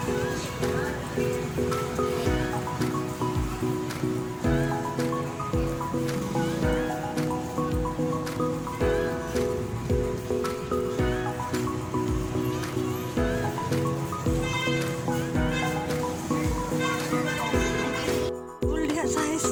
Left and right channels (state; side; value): identical; both; correlation 1.00